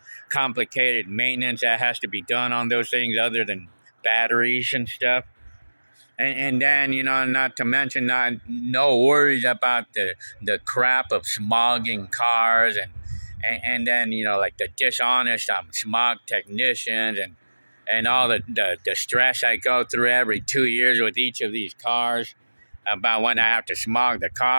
complicated maintenance that has to be done on those things other than batteries and stuff? And then, not to mention, no worries about the crap of smogging cars, and then, like the dishonest smog technicians, and all the stress I go through every 2 years with each of these cars about when I have to smog the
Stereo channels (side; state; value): both; inverted; correlation -1.00